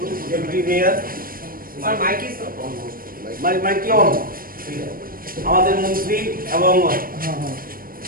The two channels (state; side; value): late; left; 0.41 ms